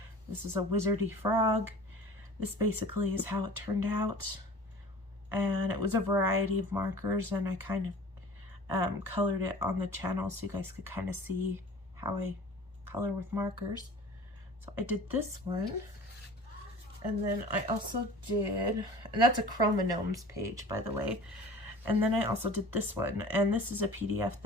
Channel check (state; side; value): normal; both; correlation 0.42